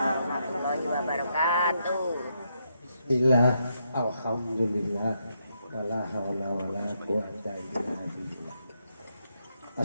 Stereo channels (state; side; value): inverted; both; correlation -0.79